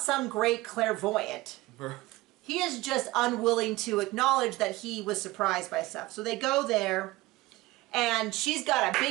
some great clairvoyant. He is just unwilling to acknowledge that he was surprised by stuff. So they go there, and she's got a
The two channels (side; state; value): left; quieter; 19.6 dB